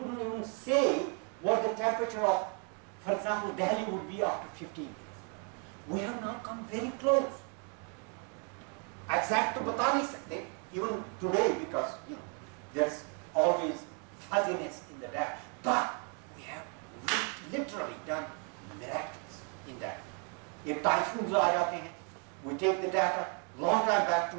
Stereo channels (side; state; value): left; quieter; 38.8 dB